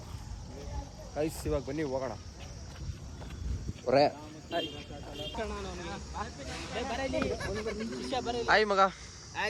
ಗೈಸ್ ಇವಾಗ ಬನ್ನಿ ಹೋಗೋಣ. ಹಾಯ್ ಮಗ.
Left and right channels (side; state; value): both; identical; correlation 1.00